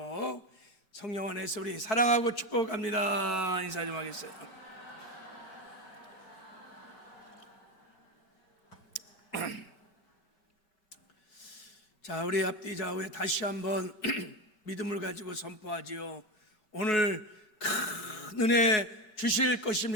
성령 안에서 우리 사랑하고 축복합니다. 인사 좀 하겠어요. 자, 우리 앞뒤 좌우에 다시 한번 믿음을 가지고 선포하지요. 오늘 큰 은혜 주실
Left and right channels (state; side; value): late; right; 5.3 ms